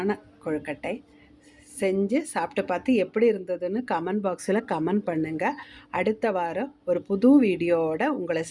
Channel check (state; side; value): identical; both; correlation 1.00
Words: கொழுக்கட்டை. செஞ்சு சாப்பிட்டு பார்த்து எப்படி இருந்ததுன்னு கமெண்ட் பாக்ஸில் கமெண்ட் பண்ணுங்கள். அடுத்த வாரம் ஒரு புது வீடியோவோட உங்களை